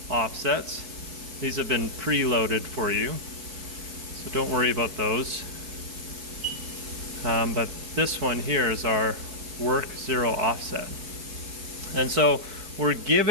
offsets. These have been preloaded for you, so don't worry about those. But this one here is our work 0 offset. And so we're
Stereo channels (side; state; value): left; late; 4.7 ms